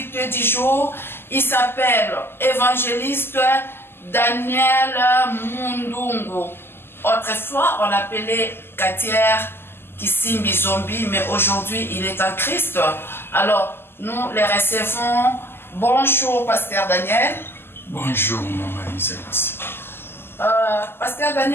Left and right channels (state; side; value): late; right; 0.11 ms